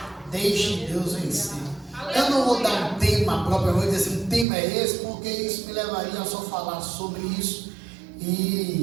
Deixe Deus vencer. Eu não vou dar um tema propriamente, dizer assim, um tema é esse, porque isso me levaria a só falar sobre isso,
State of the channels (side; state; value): left; drops out; at 4.5 s